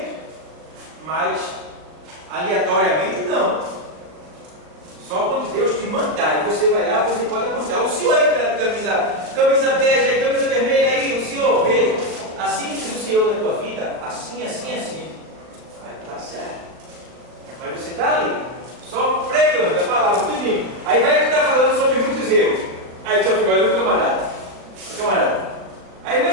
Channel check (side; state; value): left; late; 39 ms